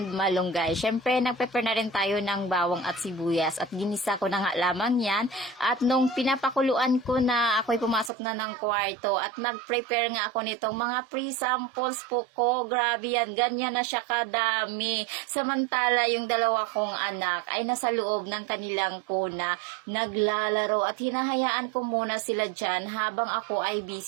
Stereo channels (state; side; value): drops out; left; at 8.1 s